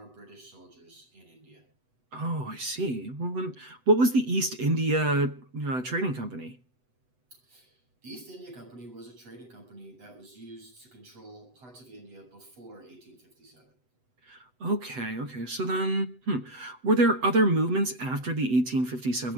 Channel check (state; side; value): late; left; 8.0 ms